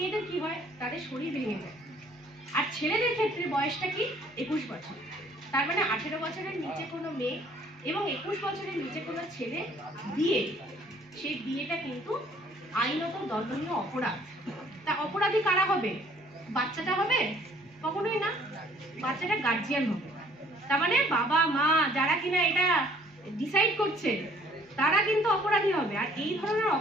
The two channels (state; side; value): normal; both; correlation 0.59